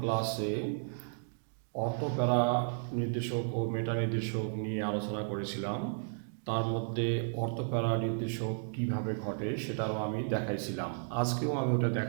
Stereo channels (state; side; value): silent; left; digital silence